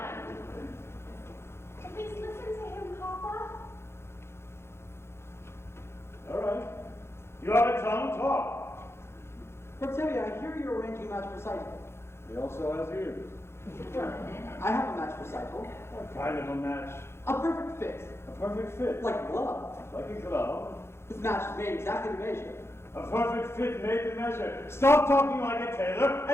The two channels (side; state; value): right; late; 0.12 ms